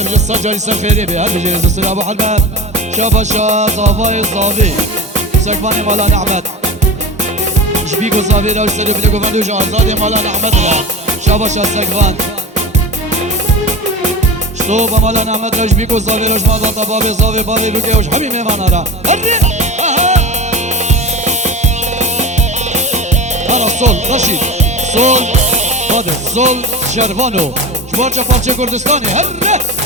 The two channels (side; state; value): both; normal; correlation 0.29